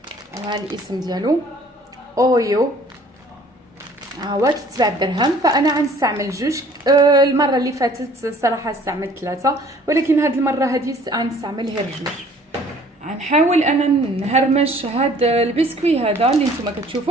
الاسم ديالو اويو، هو كيتباع بدرهم، فانا غنستعمل جوج. المره اللي فاتت صراحه استعملت 3، ولكن هذه المره هذه غنستعمل غير جوج. غنحاول انا نهرمش هذا البسكوي هذا اللي نتوما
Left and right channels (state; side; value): normal; both; correlation 0.54